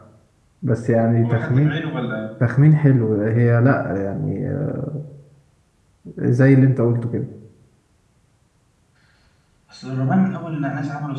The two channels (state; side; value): identical; both; correlation 1.00